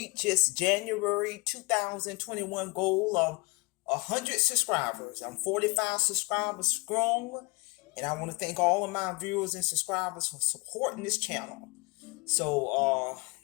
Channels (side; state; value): right; quieter; 26.5 dB